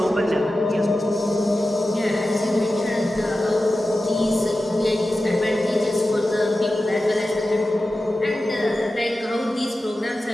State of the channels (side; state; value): both; normal; correlation 0.94